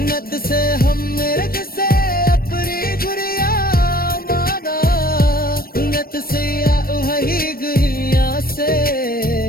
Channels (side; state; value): right; late; 0.43 ms